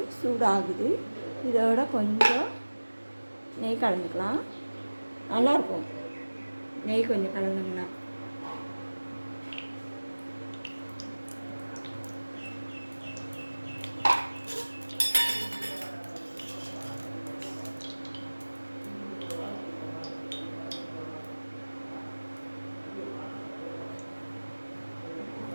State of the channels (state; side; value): inverted; both; correlation -1.00